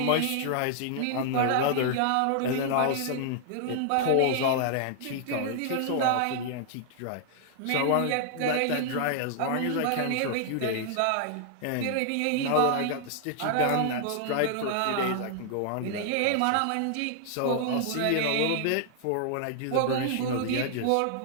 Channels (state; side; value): different; both; correlation -0.01